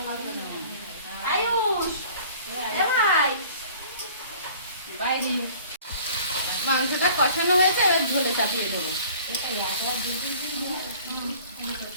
আয়ুষ এ ভাই বাইরে মাংসটা কষানো হয়েছে এবার ঝোলে চাপিয়ে দেবো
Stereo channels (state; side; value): inverted; both; correlation -0.49